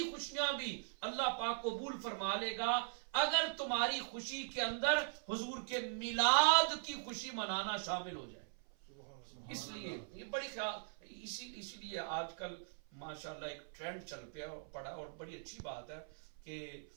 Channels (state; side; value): silent; left; 51 dB below the other